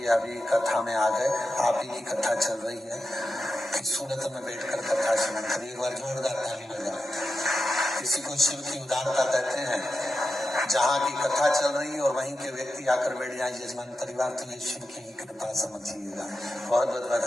अभी कथा में आ गए। आप ही की कथा चल रही है कि सूरत में बैठकर कथा सुनी। कभी एक बार जोरदार ताली बजाओ। किसी को शिव की उदारता कहते हैं। जहाँ की कथा चल रही है और वहीं के व्यक्ति आकर बैठ जाए यजमान परिवार, तो ये शिव की कृपा समझिएगा। बहुत बहुत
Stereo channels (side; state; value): both; normal; correlation 0.91